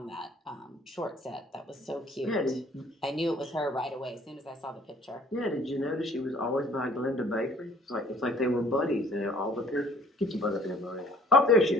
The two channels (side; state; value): both; normal; correlation 0.56